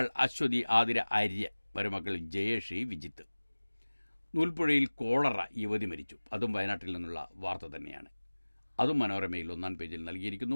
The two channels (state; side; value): inverted; both; correlation -1.00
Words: അശ്വതി, ആതിര, ആര്യ, മരുമക്കൾ ജയേഷി, വിജിത്ത്. നൂൽപ്പുഴയിൽ കോളറ, യുവതി മരിച്ചു. അതും വയനാട്ടിൽ നിന്നുള്ള വാർത്ത തന്നെയാണ്. അതും മനോരമയിൽ 1-ാം പേജിൽ നൽകിയിരിക്കുന്നു.